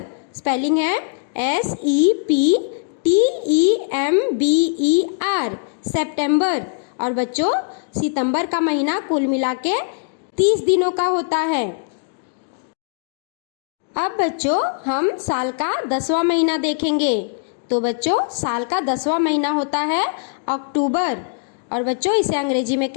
स्पेलिंग है SEPTEMBER सितंबर। और बच्चों सितंबर का महीना कुल मिला के 30 दिनों का होता है। अब बच्चों हम साल का 10वां महीना देखेंगे। तो बच्चों साल का 10वां महीना होता है अक्टूबर, और बच्चों इसे अंग्रेजी में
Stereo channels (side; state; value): right; silent; digital silence